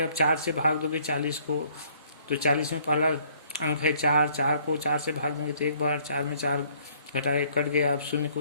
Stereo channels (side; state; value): both; inverted; correlation -0.61